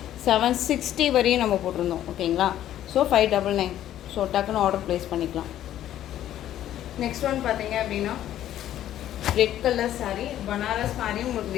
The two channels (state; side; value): quieter; right; 12.0 dB